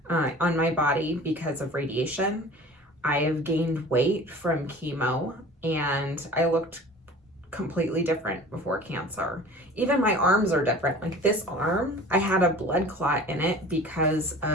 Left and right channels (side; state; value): both; normal; correlation 0.42